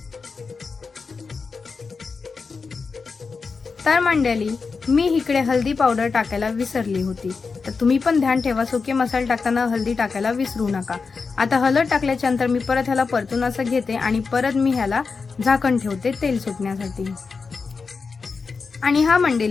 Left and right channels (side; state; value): right; quieter; 4.8 dB